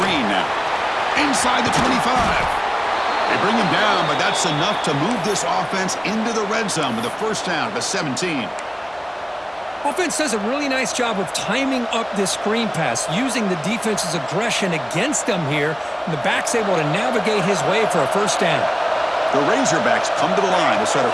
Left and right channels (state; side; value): identical; both; correlation 1.00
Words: now. Inside the 25. They bring him down, but that's enough to move this offense into the red zone with a first down at the 17. Offense does a really nice job of timing up this screen pass, using the defense's aggression against them here, and the back's able to navigate his way for a first down. The Razorbacks come to the line to start a